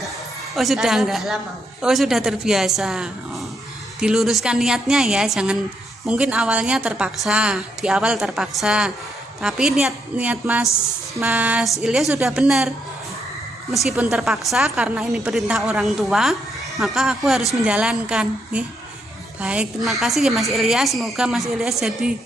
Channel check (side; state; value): both; normal; correlation 0.77